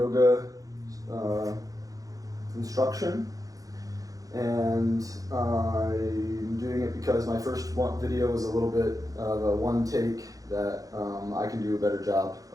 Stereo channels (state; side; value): late; left; 0.17 ms